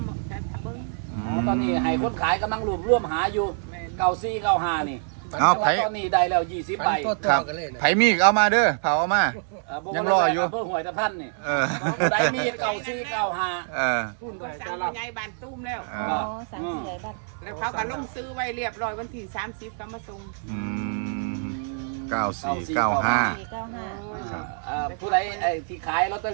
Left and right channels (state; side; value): silent; left; digital silence